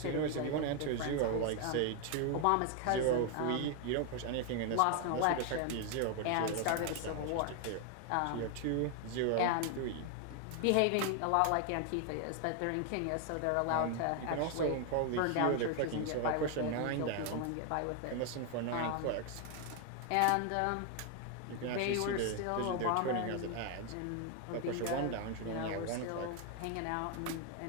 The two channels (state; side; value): different; both; correlation 0.00